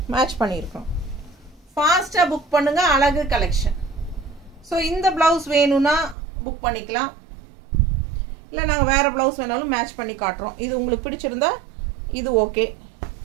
மேட்ச் பண்ணியிருக்கோம். ஃபாஸ்ட்டாக புக் பண்ணுங்க, அழகு கலெக்ஷன். ஸோ இந்த ப்ளவுஸ் வேணும்னா புக் பண்ணிக்கலாம், இல்லை நாங்கள் வேறு ப்ளவுஸ் வேணாலும் மேட்ச் பண்ணி காட்டுறோம். இது உங்களுக்கு பிடிச்சிருந்தா இது ஓகே.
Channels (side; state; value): left; drops out; at 6.2 s